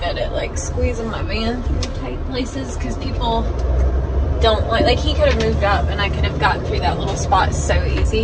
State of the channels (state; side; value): identical; both; correlation 1.00